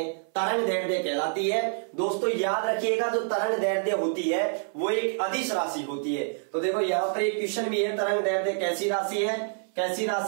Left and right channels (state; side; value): silent; left; 56 dB below the other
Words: तरंग दैर्ध्य कहलाती है। दोस्तों याद रखिएगा, जो तरंग दैर्ध्य होती है वो एक अदिश राशि होती है। तो देखो यहां पर एक क्वेश्चन भी है, तरंग दैर्ध्य कैसी राशि है, कैसी